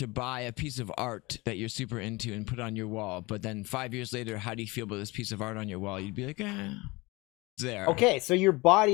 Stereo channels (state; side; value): quieter; right; 23.5 dB